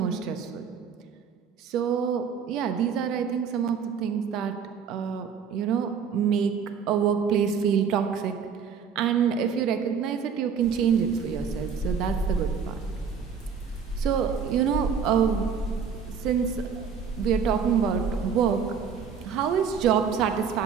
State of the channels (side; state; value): left; quieter; 6.6 dB